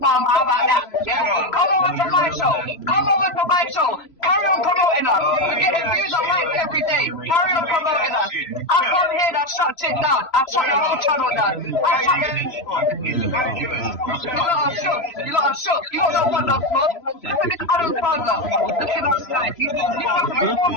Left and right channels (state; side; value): late; right; 3.0 ms